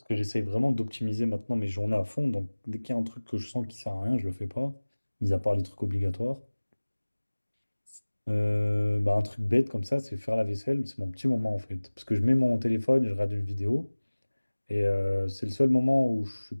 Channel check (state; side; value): inverted; both; correlation -1.00